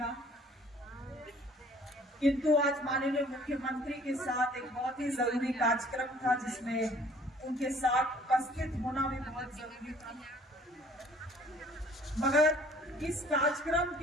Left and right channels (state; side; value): normal; both; correlation 0.55